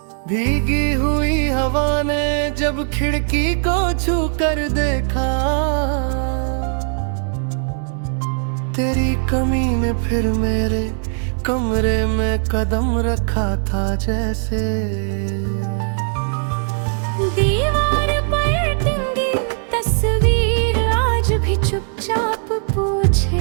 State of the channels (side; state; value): left; silent; digital silence